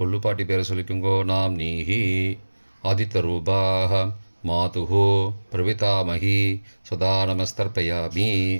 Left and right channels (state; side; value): inverted; both; correlation -1.00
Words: பேரை சொல்லிக்கோங்க. நாம்னீஹி. ஆதித்யரூபாः மாதுஹு பிரபிதாமகி சதா நமஸ்தர்ப்பயாமி.